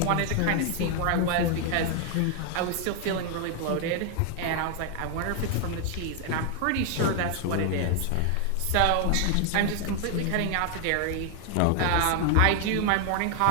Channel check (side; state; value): both; different; correlation 0.00